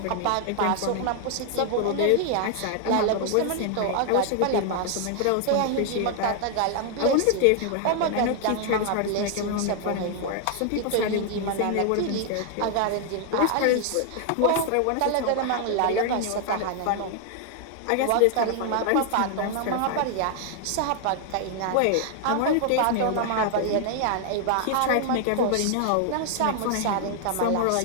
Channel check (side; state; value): both; different; correlation 0.00